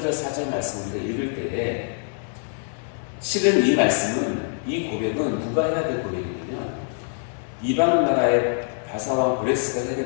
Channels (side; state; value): right; silent; digital silence